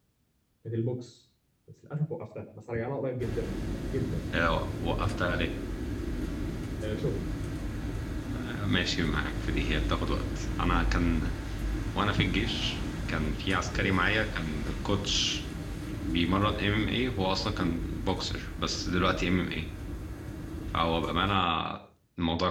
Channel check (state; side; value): identical; both; correlation 1.00